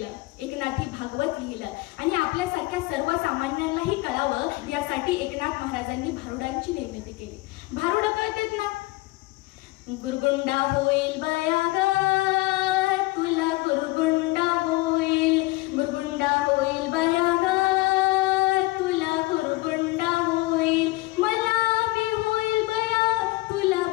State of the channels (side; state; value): right; quieter; 21.6 dB